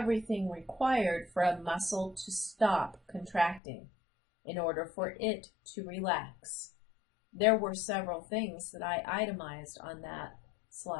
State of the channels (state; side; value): drops out; right; at 3.6 s